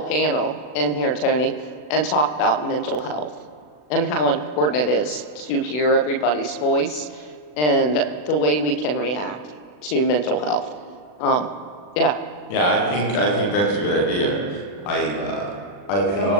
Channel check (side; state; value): right; late; 40 ms